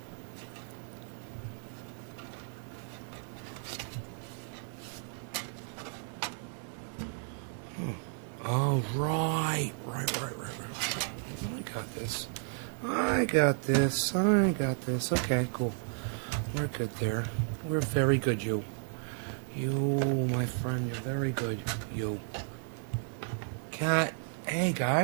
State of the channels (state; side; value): silent; left; 56 dB below the other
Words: Oh, right. I got this. Okay, cool. We're good there. We're very good, you. You, my friend, you're very good. You. Cat. Hey,